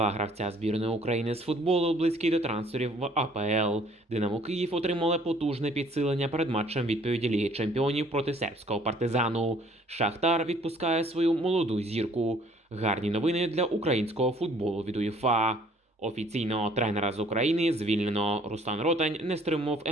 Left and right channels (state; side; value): normal; both; correlation 0.58